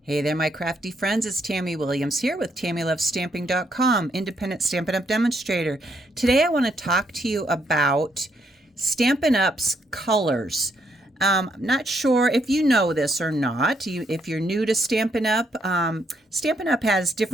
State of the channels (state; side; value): normal; both; correlation 0.74